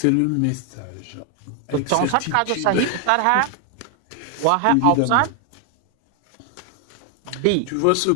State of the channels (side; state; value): both; different; correlation 0.00